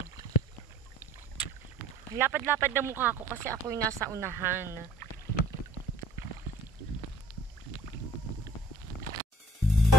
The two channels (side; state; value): both; normal; correlation 0.53